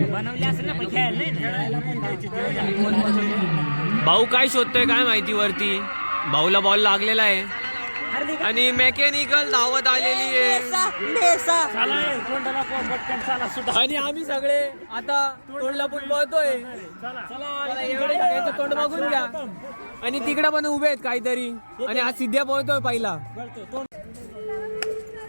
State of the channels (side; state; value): both; inverted; correlation -1.00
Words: बनवली असेल ना, पण खेळायला नाही. भाऊ काय शोधतोय काय माहिती वरती. भाऊला बॉल लागलेला आहे आणि मेकॅनिकल धावत आलेली आहे. आणि आम्ही सगळे आता तोंडला पण पळतोय. तोंड बघून घ्या. आणि तिकडे पण उभे आहेत काहीतरी. आणि आज सिद्ध्या पळतोय पहिला.